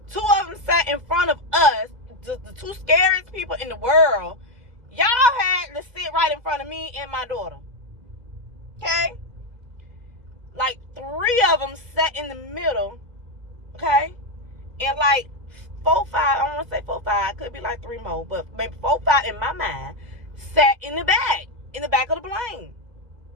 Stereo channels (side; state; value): left; late; 2.0 ms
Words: Two of them sat in front of us, the two scariest people in the world. Y'all had to sit right in front of me and my daughter. Okay? Like 3 of them sat in the middle. Okay? And like 4, 5, I don't want to say 4, 5, could be like 3 more, but maybe 4, 5 in my mind sat in the back of the plane.